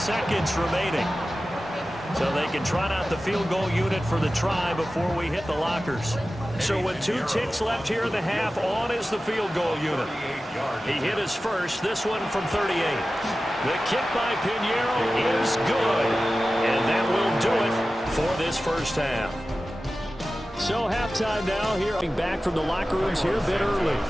remaining. So they can trot out the field goal unit for the try before we hit the lockers. So with 2 ticks left here in the half, on is the field goal unit. He hit his first, this one from 38. The kick by Pinheiro is good. And that will do it for this first half. So halftime now here. Back from the locker rooms here a bit early.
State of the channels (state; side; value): normal; both; correlation 0.95